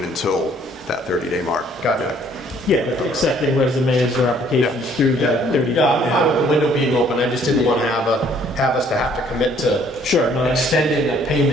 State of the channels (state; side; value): normal; both; correlation 0.61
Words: until that 30-day mark. Got it. Yeah, accepting resumes or applications through that 30 days. Yeah, I'm fine with the window being open. I just didn't want to have us to have to commit to extending a